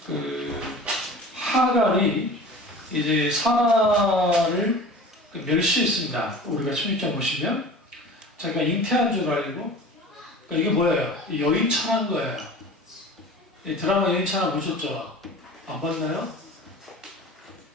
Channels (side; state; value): both; normal; correlation 0.39